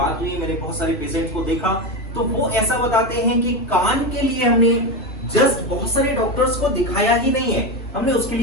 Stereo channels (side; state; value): both; normal; correlation 0.16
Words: हुई, मैंने बहुत सारे पेशेंट्स को देखा तो वो ऐसा बताते हैं कि कान के लिए हमने जस्ट बहुत सारे डॉक्टर्स को दिखाया ही नहीं है, हमने उसके